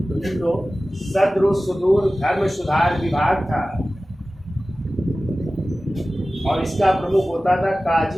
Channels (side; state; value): both; normal; correlation 0.96